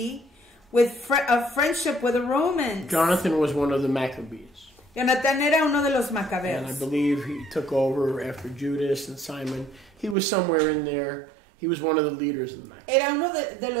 of friendship with the Romans. Jonathan was one of the Maccabees. Jonathan era uno de los And I macabeos. believe he took over after Judas and Simon. He was somewhere in there. He was one of the leaders of the Maccabees. Era uno de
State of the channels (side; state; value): left; drops out; at 10.2 s